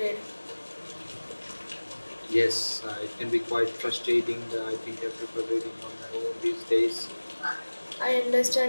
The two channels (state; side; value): inverted; both; correlation -1.00